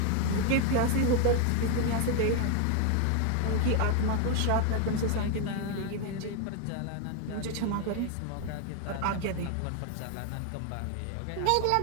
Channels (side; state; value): both; different; correlation 0.01